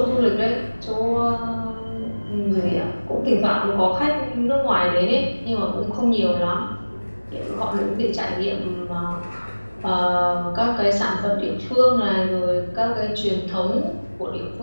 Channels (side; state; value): both; inverted; correlation -1.00